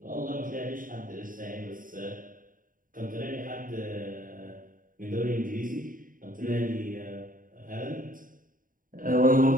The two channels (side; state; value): left; late; 0.40 ms